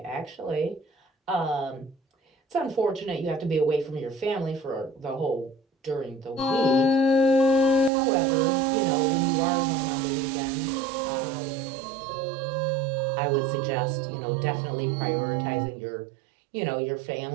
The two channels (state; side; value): drops out; left; at 7.9 s